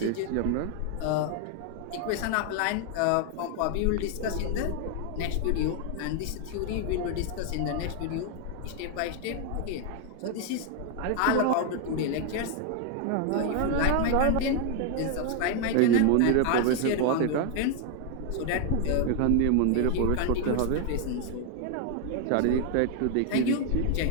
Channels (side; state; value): both; different; correlation 0.01